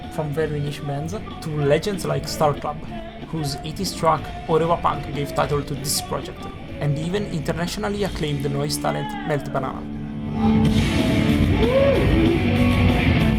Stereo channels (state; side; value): identical; both; correlation 1.00